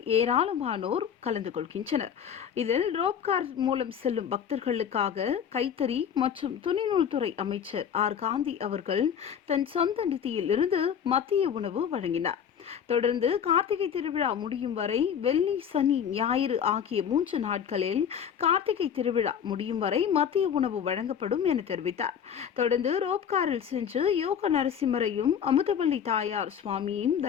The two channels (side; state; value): right; quieter; 8.1 dB